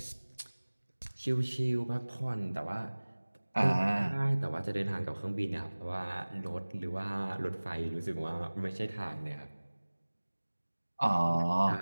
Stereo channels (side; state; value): both; inverted; correlation -1.00